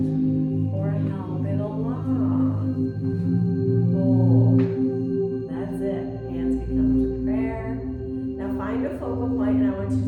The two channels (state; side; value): identical; both; correlation 1.00